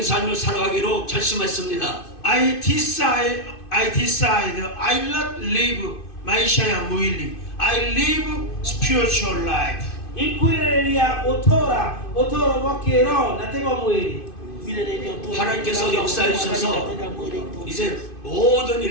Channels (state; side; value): late; right; 2.5 ms